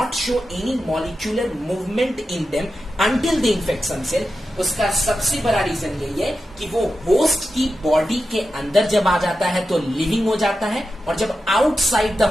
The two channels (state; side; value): normal; both; correlation 0.91